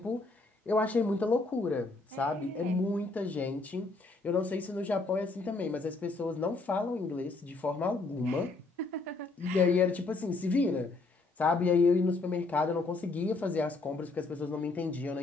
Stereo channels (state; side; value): quieter; right; 3.5 dB